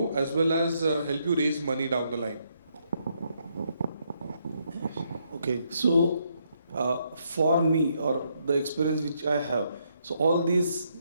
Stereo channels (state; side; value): inverted; both; correlation -0.75